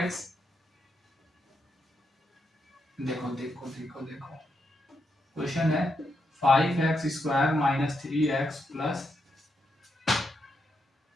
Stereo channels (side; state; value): both; normal; correlation 0.82